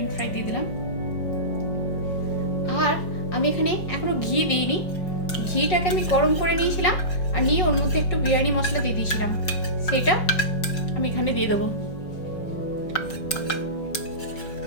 ফ্রাই দিয়ে দিলাম। আর আমি এখানে এখনো ঘি দিইনি। ঘিটাকে আমি গরম করে নিয়েছিলাম আর নিয়ে ওর মধ্যে একটু বিরিয়ানি মশলা দিয়ে দিয়েছিলাম, সেটা আমি এখানে দিয়ে দেবো।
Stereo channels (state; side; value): late; right; 5.4 ms